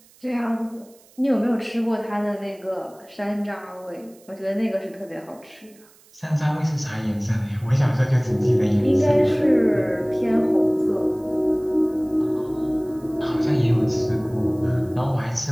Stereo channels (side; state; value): right; noise; hiss, 28 dB below the sound